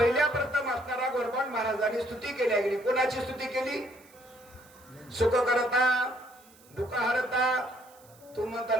प्रथम असणारा गोरबाण महाराजांनी स्तुती केली गेली. कोणाची स्तुती केली? सुख करता दुःख हरता. तू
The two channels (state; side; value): noise; right; hiss, 26 dB below the sound